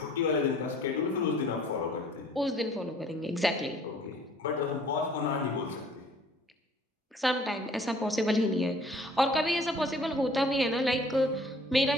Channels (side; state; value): both; normal; correlation 0.55